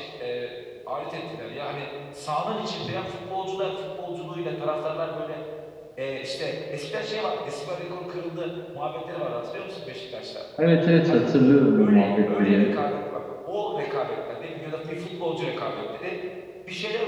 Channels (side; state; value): both; identical; correlation 1.00